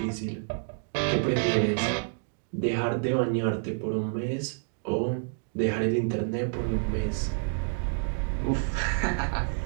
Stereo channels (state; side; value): silent; left; digital silence